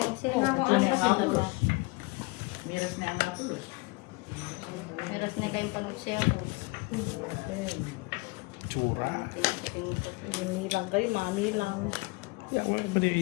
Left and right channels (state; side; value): quieter; right; 25.8 dB